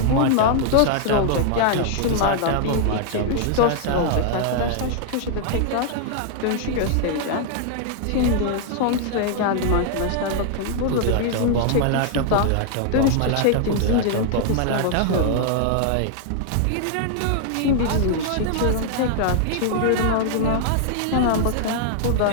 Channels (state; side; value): different; both; correlation 0.00